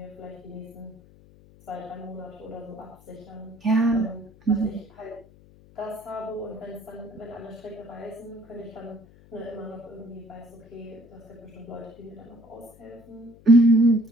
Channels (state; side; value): noise; left; hum, 24 dB below the sound